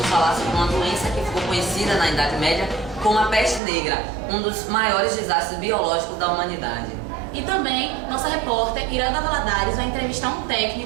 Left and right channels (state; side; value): drops out; left; at 3.6 s